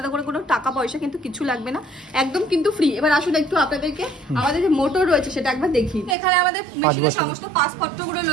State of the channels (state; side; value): drops out; left; at 6.2 s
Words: করে কোনো টাকা পয়সা কিন্তু কিছু লাগবে না, একদম কিন্তু ফ্রি। এবার আসুন একটু আপনাদেরকে আমাদের যে মোটর রয়েছে সেটা একবার দেখি। এখানে আমাদের মেশিনের সমস্ত পাসপত্রগুলো